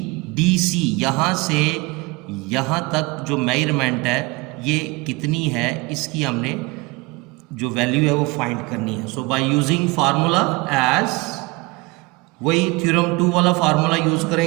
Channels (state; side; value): quieter; left; 24.4 dB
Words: DC। यहाँ से यहाँ तक जो मेजरमेंट है ये कितनी है, इसकी हमने जो वैल्यू है वो फाइंड करनी है। सो बाय यूजिंग फार्मूला एज, वही थ्योरम 2 वाला फार्मूला यूज